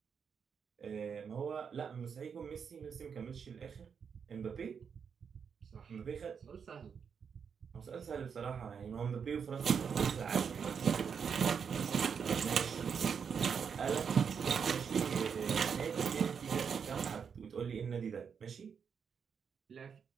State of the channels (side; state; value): left; quieter; 6.7 dB